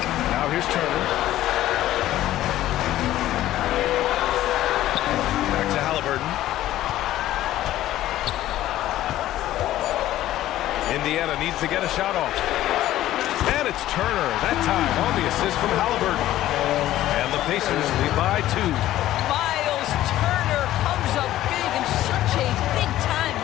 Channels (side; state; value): right; quieter; 14.0 dB